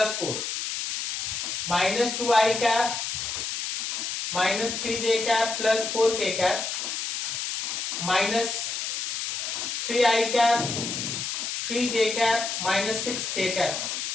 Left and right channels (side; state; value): left; noise; hiss, 2 dB below the sound